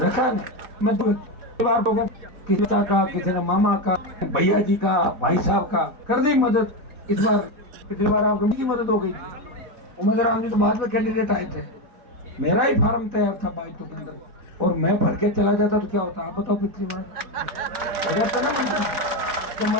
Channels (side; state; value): left; late; 4.0 ms